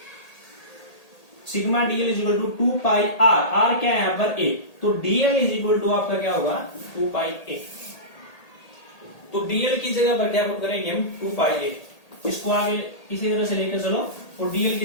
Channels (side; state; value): right; late; 1.8 ms